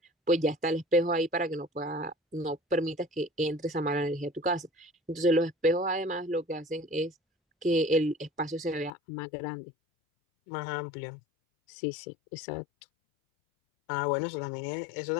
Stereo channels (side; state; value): right; drops out; at 8.9 s